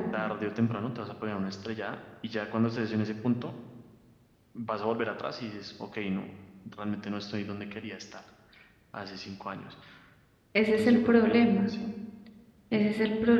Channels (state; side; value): identical; both; correlation 1.00